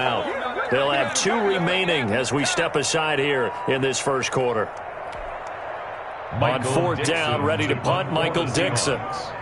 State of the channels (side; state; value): both; identical; correlation 1.00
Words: They'll have 2 remaining as we step aside here in this first quarter. On 4th down, ready to punt, Michael Dixon.